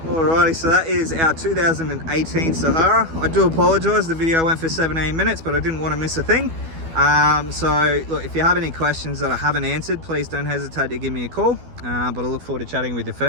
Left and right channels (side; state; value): left; late; 12 ms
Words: Alrighty, so that is our 2018 Sahara. I do apologise, the video went for 17 minutes, but I didn't want to miss a thing. So look, if you have any questions that I haven't answered, please don't hesitate to give me a call. But I look forward to chatting with you